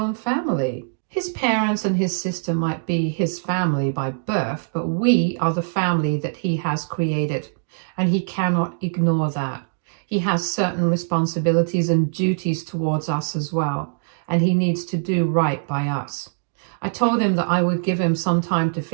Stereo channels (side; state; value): left; silent; digital silence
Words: family. His parents and his sister might be his family by birth, but we are the family that he has created, and he cannot ignore that. He has certain responsibilities and duties towards us as well, and he needs to do right by us. I told him that I would give him some time to